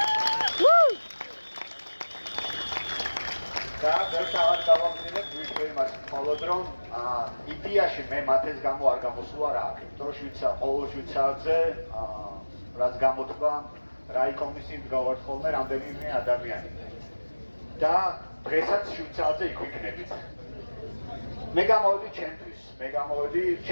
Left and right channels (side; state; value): both; inverted; correlation -1.00